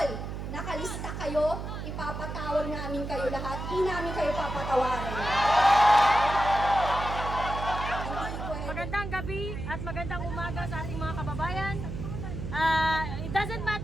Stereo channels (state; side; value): noise; right; hum, 6 dB below the sound